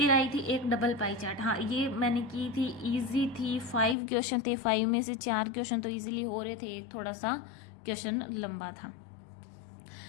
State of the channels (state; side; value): drops out; right; at 4.0 s